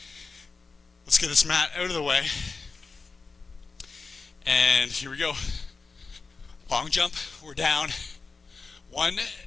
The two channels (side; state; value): right; quieter; 4.4 dB